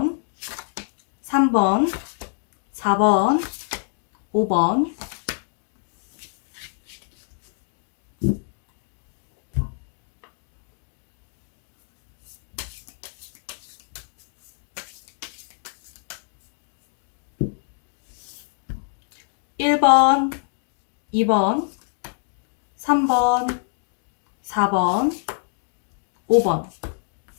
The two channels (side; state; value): right; silent; digital silence